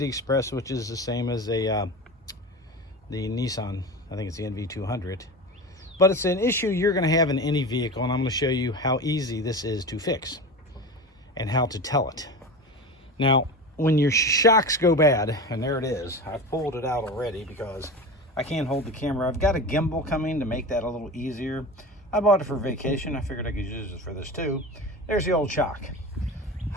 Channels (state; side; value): normal; both; correlation 0.28